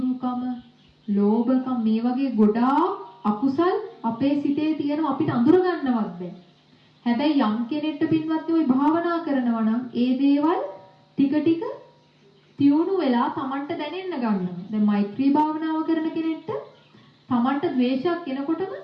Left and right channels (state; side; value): identical; both; correlation 1.00